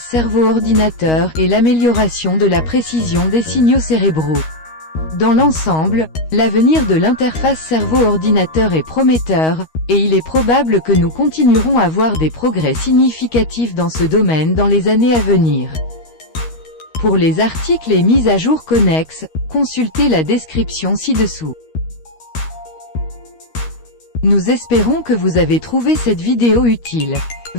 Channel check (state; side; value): late; right; 13 ms